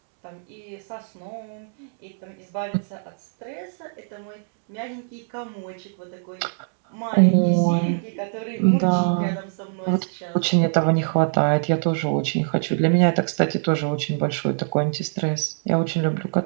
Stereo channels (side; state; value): left; silent; digital silence